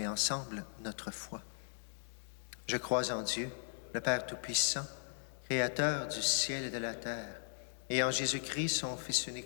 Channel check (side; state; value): right; silent; digital silence